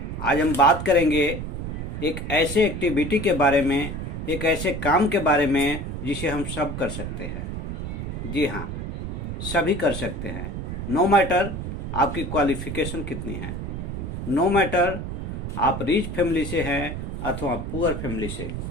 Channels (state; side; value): noise; right; rumble, 5 dB below the sound